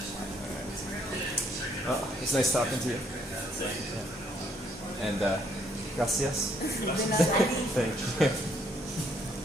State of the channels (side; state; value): both; normal; correlation 0.69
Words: Well, it's nice talking to you. And gracias. Thank you.